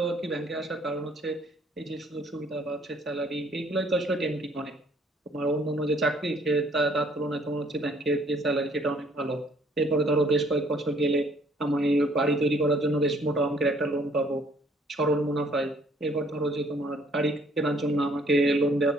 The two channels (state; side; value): normal; both; correlation 0.62